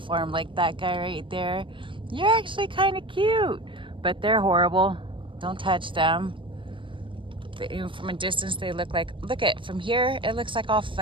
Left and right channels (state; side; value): late; left; 0.25 ms